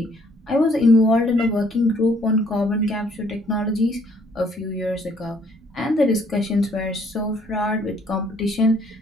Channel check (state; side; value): normal; both; correlation 0.64